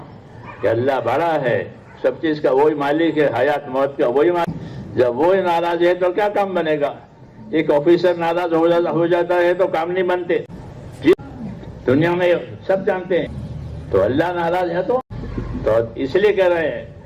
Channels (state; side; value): identical; both; correlation 1.00